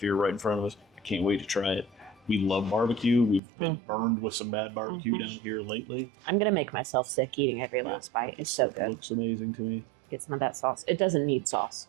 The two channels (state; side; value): drops out; left; at 3.4 s